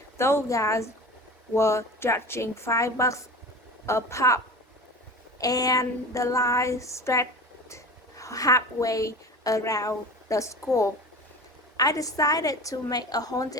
Those guys were charging $5 a pop, and the line stretched halfway around the school. I decided to make a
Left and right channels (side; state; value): both; normal; correlation 0.34